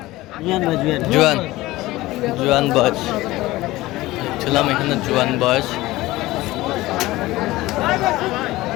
জুয়ান বয়স ছিলাম এখানে, জুয়ান বয়স।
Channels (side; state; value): right; quieter; 18.4 dB